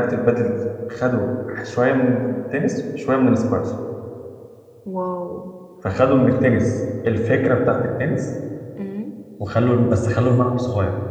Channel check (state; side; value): identical; both; correlation 1.00